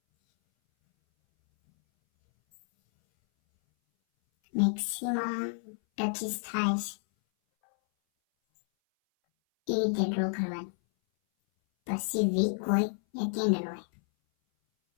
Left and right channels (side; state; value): right; silent; 58 dB below the other